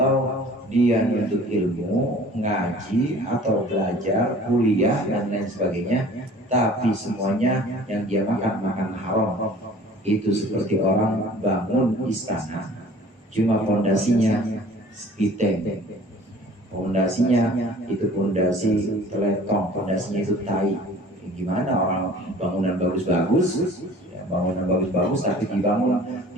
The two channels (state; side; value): normal; both; correlation 0.49